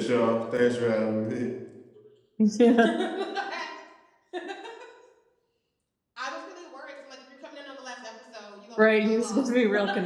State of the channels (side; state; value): both; identical; correlation 1.00